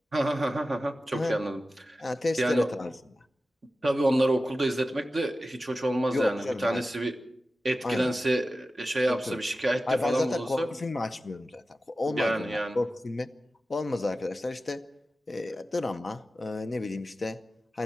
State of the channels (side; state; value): both; normal; correlation 0.94